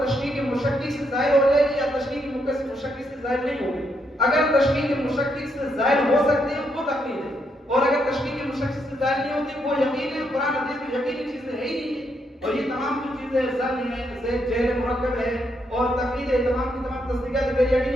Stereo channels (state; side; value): normal; both; correlation 0.77